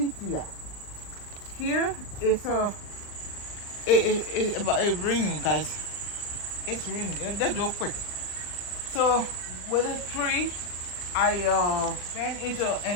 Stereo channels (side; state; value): right; late; 40 ms